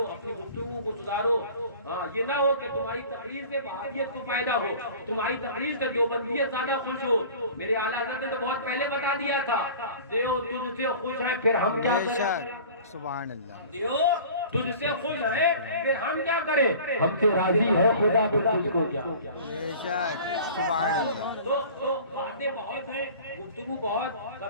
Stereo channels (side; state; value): both; inverted; correlation -0.42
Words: اپنی گفتگو کو سدھارو. ہاں یہ نہ ہو کہ تمہاری تقریر سے وہابیت کو فائدہ ہو، تمہاری تقریر سے دیوبندیت زیادہ خوش ہو. میرے اعلیٰ حضرت نے تو بہت پہلے بتا دیا تھا دیو تجھ سے خوش ہے پھر ہم کیا کریں. سبحان اللہ. دیو تجھ سے خوش ہے پھر ہم کیا کریں، ہم سے راضی ہے خدا پھر تجھ کو کیا. سبحان اللہ. تو باتیں بہت ہیں، گفتگو بہت.